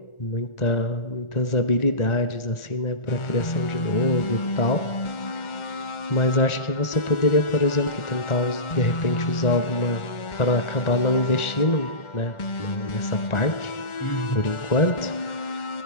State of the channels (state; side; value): late; right; 1.4 ms